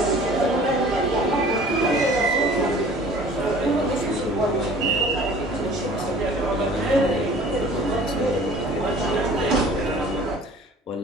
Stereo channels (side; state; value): both; normal; correlation 0.47